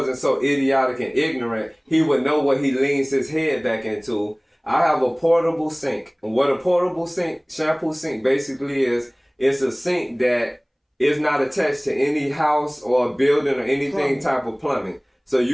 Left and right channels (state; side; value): identical; both; correlation 1.00